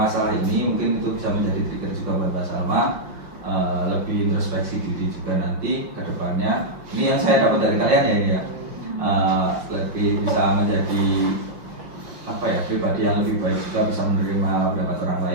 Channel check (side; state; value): left; late; 5.7 ms